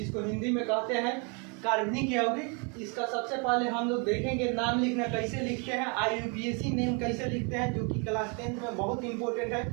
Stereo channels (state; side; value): quieter; left; 34.6 dB